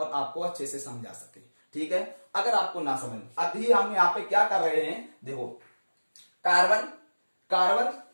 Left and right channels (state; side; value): inverted; both; correlation -1.00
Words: आपको अच्छे से समझा सकें, ठीक है। अगर आपको ना समझ, अभी हम यहाँ पे क्या कर रहे हैं? देखो कार्बन